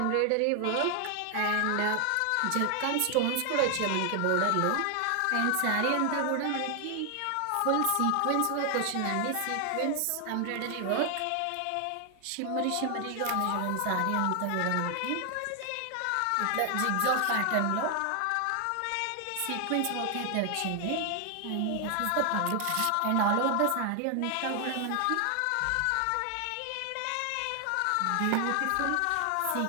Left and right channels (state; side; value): different; both; correlation 0.00